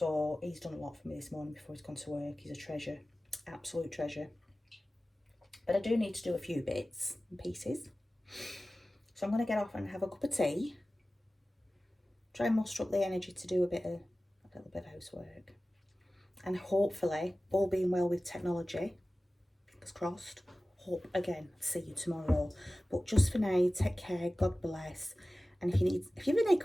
he's done a lot for me this morning before he's gone to work. He's a treasure, absolute treasure. But I do need to do a few bits and pieces. So I'm going to get off and have a cup of tea. Try and muster up the energy to do a little bit of housework. And hopefully, all being well with technology, fingers crossed, hope again, see you tomorrow. But just for now, take care, God bless. And if you have any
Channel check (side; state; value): both; normal; correlation 0.96